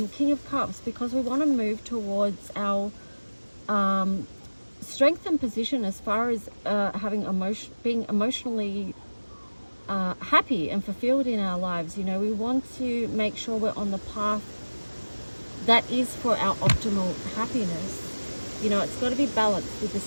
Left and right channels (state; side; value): inverted; both; correlation -1.00